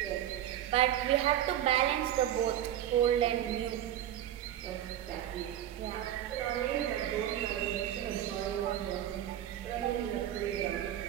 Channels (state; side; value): quieter; left; 11.7 dB